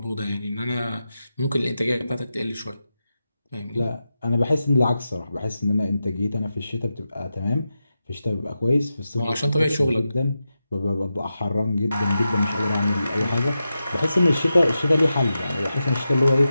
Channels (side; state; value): both; inverted; correlation -0.90